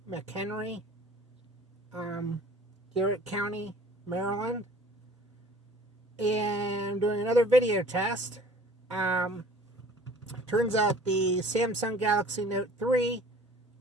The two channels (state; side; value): normal; both; correlation 0.48